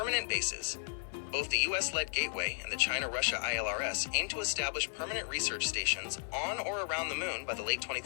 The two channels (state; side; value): silent; right; digital silence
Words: bases. Both the US-led Gateway and the China-Russia ILRS aim to establish permanent research stations on or around the moon by the late